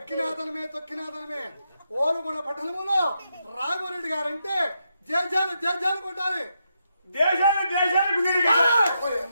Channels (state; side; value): inverted; both; correlation -0.83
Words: తొక్కినాదనమే ఓలుగొండ పట్టణంలో రాఘవరెడ్డి గారంటే జయజాలు జయజాలు కొట్టాలి. దేశాలు దేశాలకు